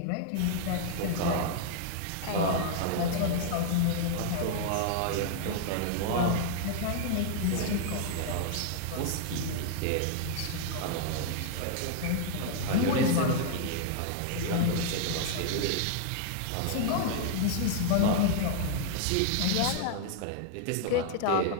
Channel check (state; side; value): different; both; correlation 0.00